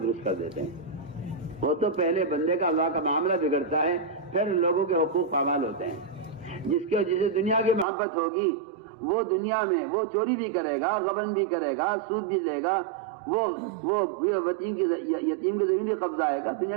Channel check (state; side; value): drops out; left; at 7.9 s